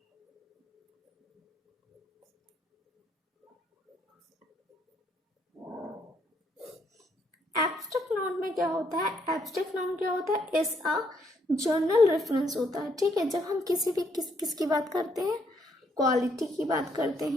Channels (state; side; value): normal; both; correlation 0.72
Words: एब्स्ट्रैक्ट नाउन में क्या होता है, एब्स्ट्रैक्ट नाउन क्या होता है, इज अ जर्नल रेफरेंस होता है, ठीक है। जब हम किसी भी किसकी बात करते हैं, क्वालिटी की बात करते